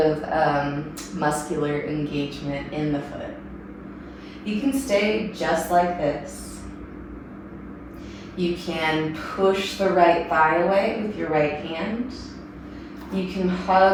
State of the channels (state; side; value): identical; both; correlation 1.00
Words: muscular engagement in the foot. You can stay just like this. You can push the right thigh away with your right hand. You can